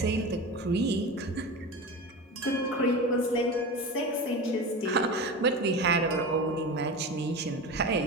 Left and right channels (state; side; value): normal; both; correlation 0.28